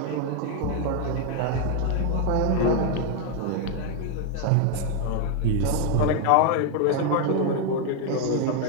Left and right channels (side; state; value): both; different; correlation 0.00